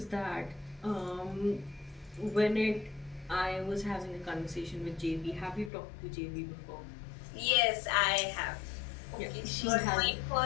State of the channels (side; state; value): right; drops out; at 5.7 s